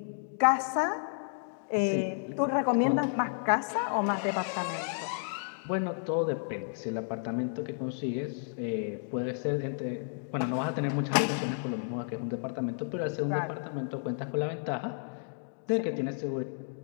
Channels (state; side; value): silent; right; digital silence